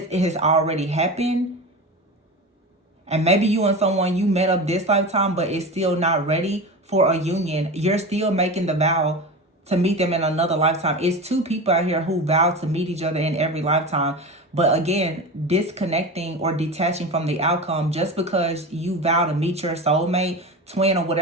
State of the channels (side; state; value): both; normal; correlation 0.27